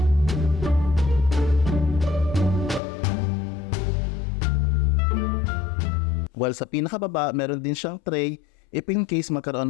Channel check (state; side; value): drops out; right; at 2.8 s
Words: While sa pinakababa, meron din siyang tray if in case magkaroon